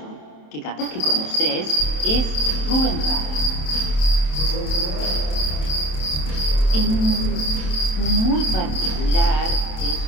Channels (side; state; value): right; late; 27 ms